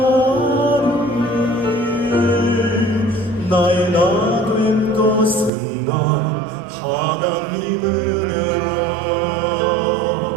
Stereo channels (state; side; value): drops out; left; at 5.5 s